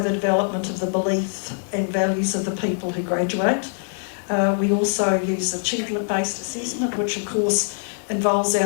development of the belief and values of the people who graduate. We also use achievement-based assessment, which of course involves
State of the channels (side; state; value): right; silent; digital silence